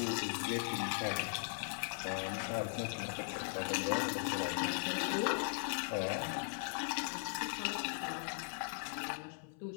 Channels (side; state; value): right; silent; 52 dB below the other